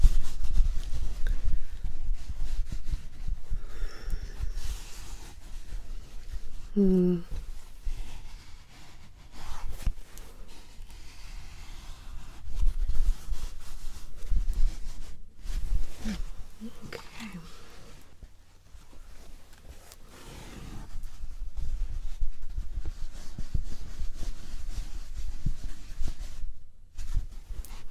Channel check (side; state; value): both; identical; correlation 1.00